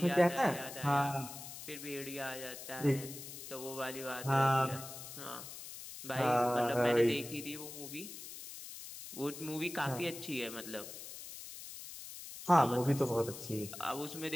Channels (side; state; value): left; noise; hiss, 11 dB below the sound